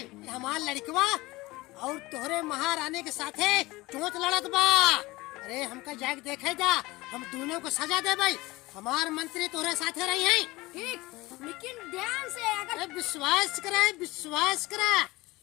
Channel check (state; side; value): quieter; right; 20.8 dB